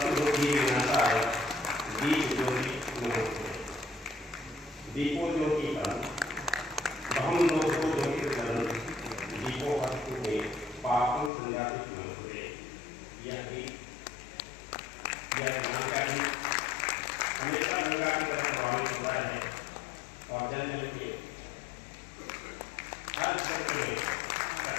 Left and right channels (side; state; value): right; drops out; at 11.3 s